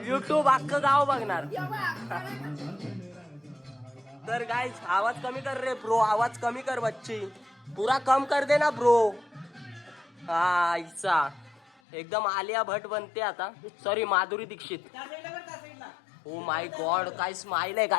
युट्यूब अख्खं गाव बघणार. तर गाईस आवाज कमी कर रे ब्रो. आवाज कमी कर बच्ची. पूरा कम कर दे ना ब्रो. हा इच्छा एकदम आलिया भट बनते आता. Sorry Madhuri Dixit. Oh my god काय स्माइल आहे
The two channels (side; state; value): right; drops out; at 11.7 s